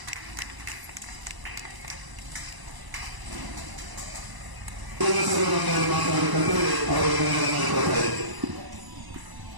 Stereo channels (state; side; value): late; left; 1.0 ms